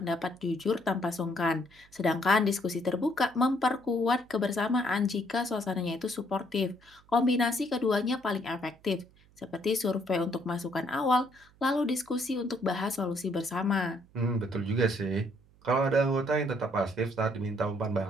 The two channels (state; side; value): noise; right; hum, 29 dB below the sound